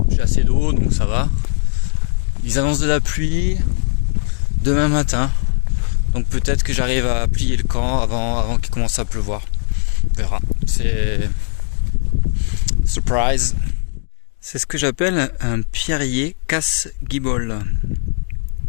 assez d'eau donc ça va. Ils annoncent de la pluie demain matin, donc peut-être que j'arrive à plier le camp avant qu'il commence à pleuvoir. On verra. C'est surprise. C'est ce que j'appelle un pierrier casse-guibole.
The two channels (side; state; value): right; silent; digital silence